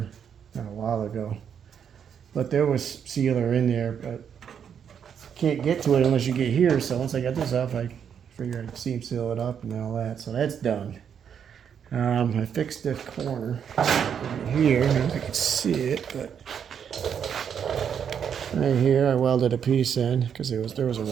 a while ago. But there was sealer in there, but can't get to it unless you get here. So once I got this off, I figured I'd seam seal it up and all that. So that's done. I fixed the corner right here. I don't know if you can see it, but right here I welded a piece in because there was a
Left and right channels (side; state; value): left; quieter; 7.9 dB